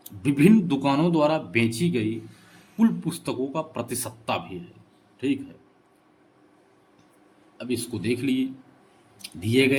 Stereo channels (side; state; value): both; identical; correlation 1.00